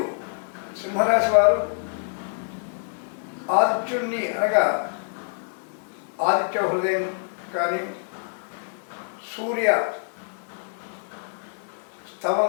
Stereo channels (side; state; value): right; silent; 61 dB below the other